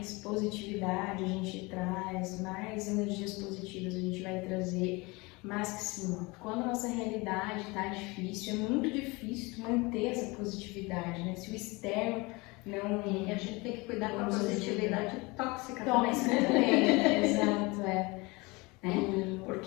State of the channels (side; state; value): right; quieter; 25.1 dB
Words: positividade a gente traz, mais energias positivas a gente vai trazer. Mas que sim, quando a nossa realidade está difícil, é muito difícil manter essa positividade, né? Se o externo não... E a gente tem que cuidar com a positividade tóxica também. Exato, né?